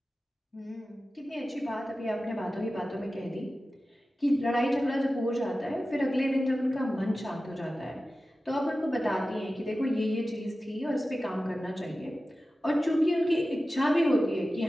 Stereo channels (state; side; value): normal; both; correlation 0.95